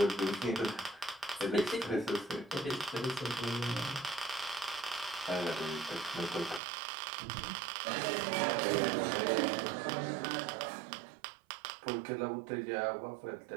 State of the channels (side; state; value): left; drops out; at 6.6 s